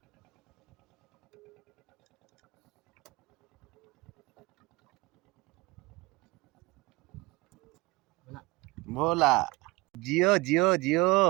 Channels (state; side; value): quieter; left; 23.1 dB